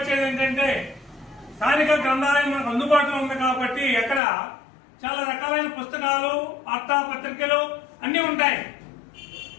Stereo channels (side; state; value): right; drops out; at 4.2 s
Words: ఏంటంటే, స్థానిక గ్రంథాలయం మనకు అందుబాటులో ఉంది కాబట్టి ఎక్కడ చాలా రకాలైన పుస్తకాలు, వార్తాపత్రికలు అన్ని ఉంటాయి.